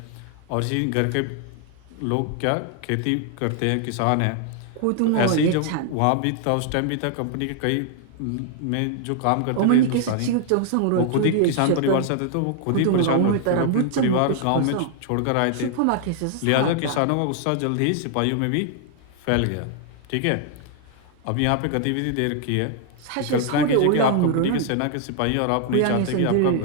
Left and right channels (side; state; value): both; different; correlation 0.00